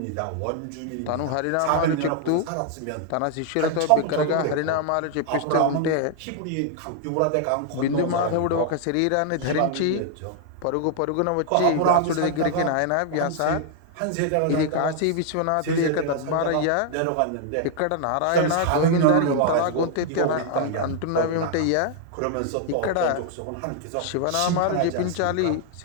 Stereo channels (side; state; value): both; different; correlation 0.00